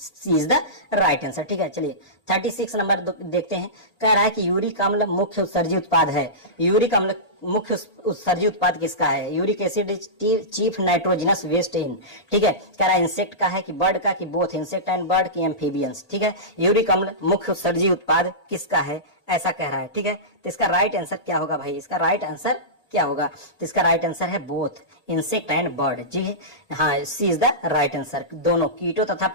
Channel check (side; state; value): right; late; 1.8 ms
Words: is the right answer. ठीक है, चलिए 36 नंबर देखते हैं। कह रहा है कि यूरिक अम्ल मुख्य उत्सर्जी उत्पाद है। यूरिक अम्ल मुख्य उत्सर्जी उत्पाद किसका है? Uric acid is chief nitrogenous waste in. ठीक है, कह रहा है इंसेक्ट का है कि बर्ड का कि बोथ इंसेक्ट एंड बर्ड की एम्फीबियंस। ठीक है, यूरिक अम्ल मुख्य उत्सर्जी उत्पाद किसका है, ऐसा कह रहा है। ठीक है, तो इसका राइट आंसर क्या होगा भाई? इसका राइट आंसर क्या होगा? तो इसका राइट आंसर है बोथ इंसेक्ट एंड बर्ड। जी हाँ, सी इज द राइट आंसर। दोनों कीटों तथा